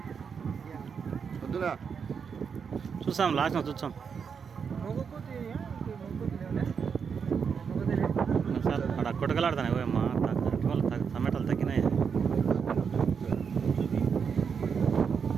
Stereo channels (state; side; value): quieter; left; 6.4 dB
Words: చూసాం లాస్ట్ చూసాం సార్ అక్కడ కొట్టకలాడుతాయి. ఓ అమ్మ టమాటాలు తగ్గినాయి.